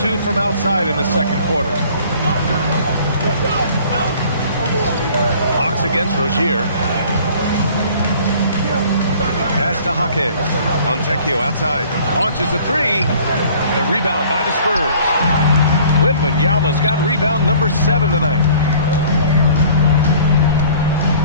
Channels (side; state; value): both; inverted; correlation -0.51